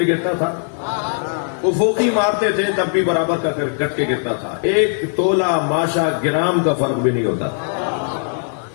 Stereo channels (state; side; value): silent; right; digital silence